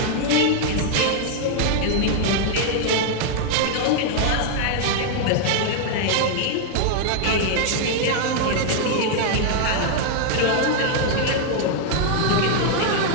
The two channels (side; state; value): both; different; correlation 0.00